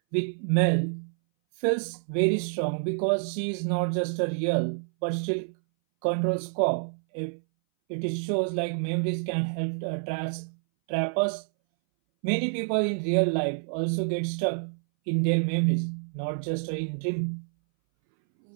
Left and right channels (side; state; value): left; silent; 59 dB below the other